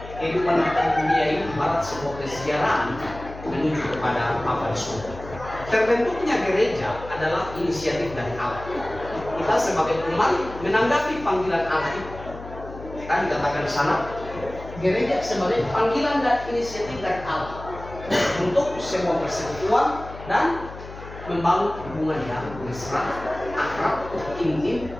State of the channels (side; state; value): left; noise; hum, 14 dB below the sound